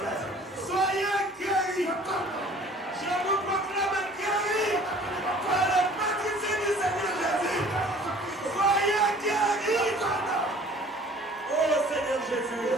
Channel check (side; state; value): both; normal; correlation 0.51